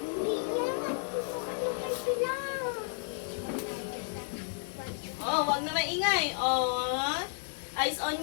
maingay. Oh, eyes on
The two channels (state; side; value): silent; right; digital silence